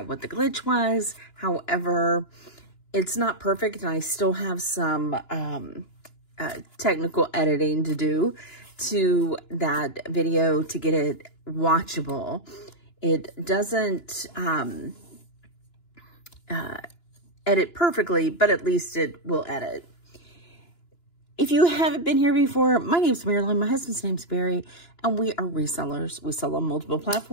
what the glitch was. However, it's not perfect, and I still have some technical editing to do to that video to get it watchable. It doesn't edit perfectly, but at least it will edit. If you haven't been here before, my name's Marilyn, my husband's name's Barry, and we are resellers. We sell on multiple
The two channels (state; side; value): late; right; 2.9 ms